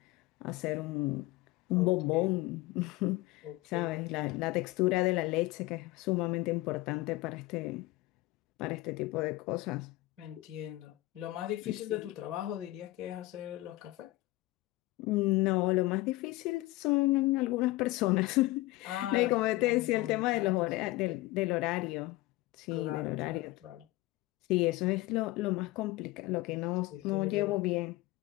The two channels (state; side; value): quieter; right; 19.2 dB